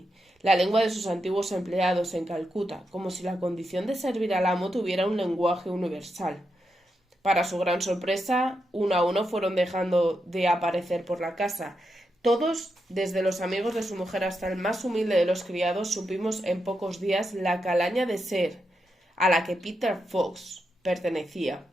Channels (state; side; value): normal; both; correlation 0.85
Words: la lengua de sus antiguos empleados en Calcuta, como si la condición de servir al amo tuviera un lenguaje universal. Para su gran sorpresa, uno a uno fueron dejando de aparecer por la casa. Todos, desde los amigos de su mujer hasta el más humilde de los criados, supimos en pocos días la calaña de ser a la que Peter Fox pertenecía,